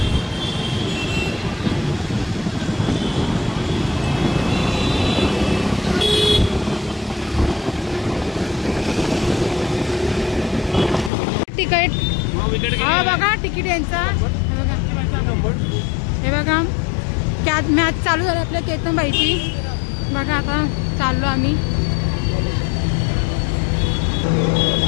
तिकीट हा बघा, तिकीट यांचा हे बघा। कॅच मॅच चालू झाली आपल्या केतनबाईची बघा। आता चाललो आम्ही।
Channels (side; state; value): right; drops out; at 11.1 s